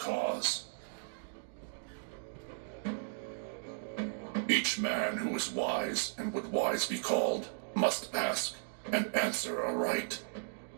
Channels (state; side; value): silent; left; digital silence